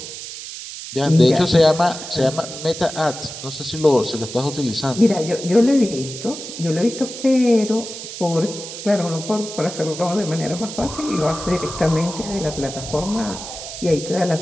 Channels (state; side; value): noise; right; hiss, 10 dB below the sound